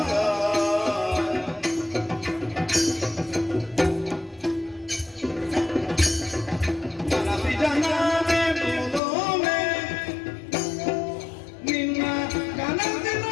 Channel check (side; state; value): right; drops out; at 9.0 s